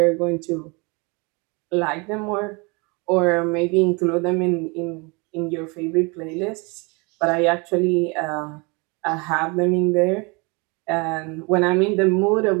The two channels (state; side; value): quieter; left; 29.2 dB